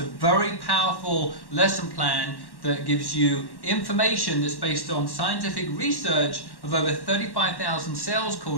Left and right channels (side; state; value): right; late; 1.1 ms